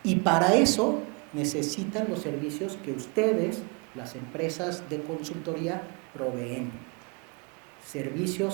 y para eso necesitan los servicios que ustedes, las empresas de consultoría, proveen.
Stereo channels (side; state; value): left; quieter; 31.9 dB